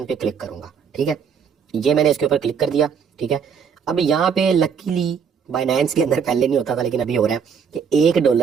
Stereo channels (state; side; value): quieter; left; 6.9 dB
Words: पे क्लिक करूंगा। ठीक है, ये मैंने इसके ऊपर क्लिक कर दिया। ठीक है, अब यहाँ पे लकीली बाइनेंस के अंदर पहले नहीं होता था लेकिन अभी हो रहा है कि